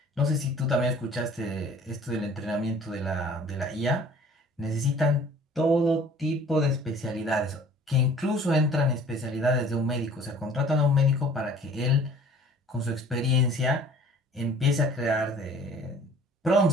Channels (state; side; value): normal; both; correlation 0.50